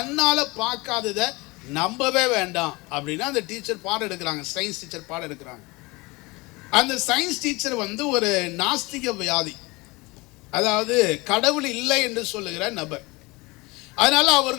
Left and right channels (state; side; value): quieter; right; 24.3 dB